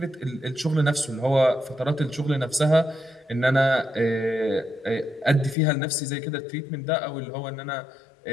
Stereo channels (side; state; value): right; drops out; at 5.6 s